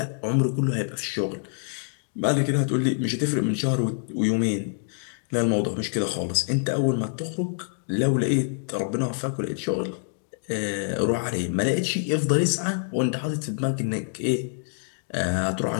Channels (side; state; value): right; silent; digital silence